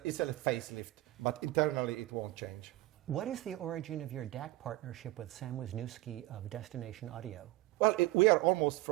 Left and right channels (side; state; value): left; quieter; 18.2 dB